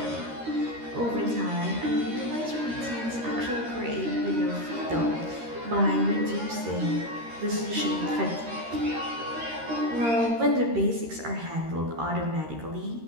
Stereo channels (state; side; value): late; left; 13 ms